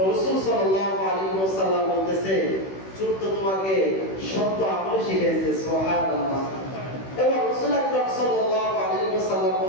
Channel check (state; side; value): late; right; 16 ms